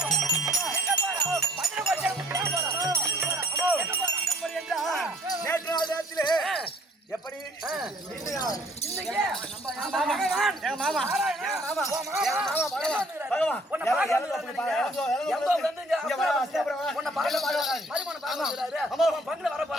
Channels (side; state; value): both; normal; correlation 0.60